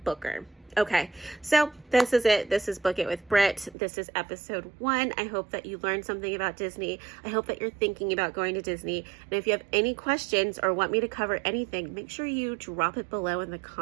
booker. Okay, so this is it. This is Book It with Britt. This is episode 1. I hope that you learned something about Disney. I hope that you're thinking about going to Disney. And if you have any questions or want me to cover anything, make sure you drop it below in the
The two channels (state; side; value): drops out; left; at 3.8 s